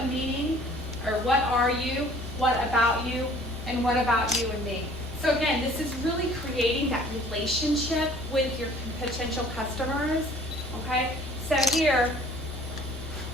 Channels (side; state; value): both; normal; correlation 0.52